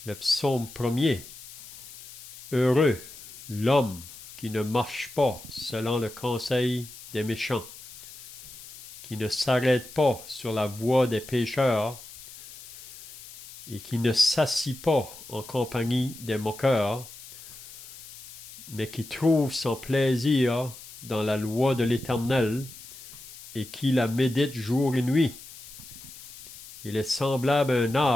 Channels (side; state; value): left; noise; hiss, 15 dB below the sound